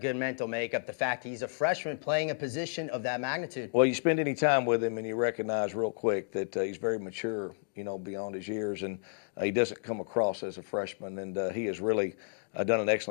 good mental makeup, the fact he's a freshman playing a position of that magnitude. Well, you spend any time with him and you recognize real quick that he's very mature, beyond his years, and he doesn't come across as a freshman, and he has really done an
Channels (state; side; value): silent; right; digital silence